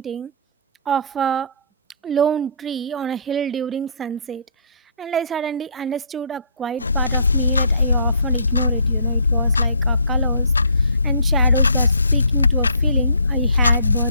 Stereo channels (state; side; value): inverted; both; correlation -0.59